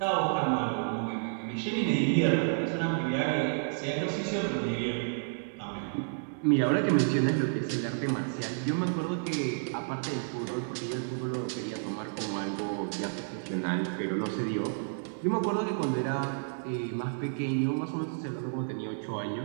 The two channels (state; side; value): silent; left; digital silence